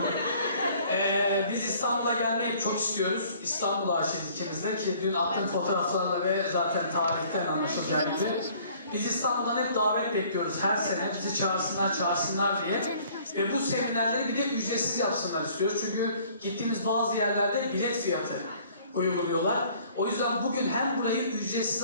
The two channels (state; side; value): inverted; both; correlation -0.56